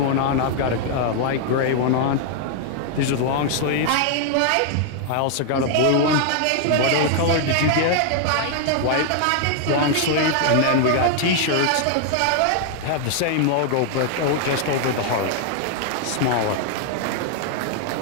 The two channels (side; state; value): both; different; correlation 0.00